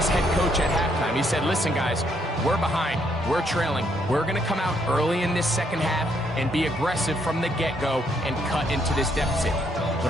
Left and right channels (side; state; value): both; normal; correlation 0.72